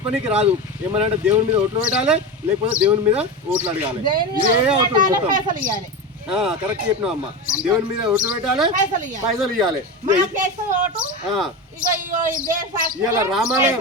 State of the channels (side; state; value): both; normal; correlation 0.21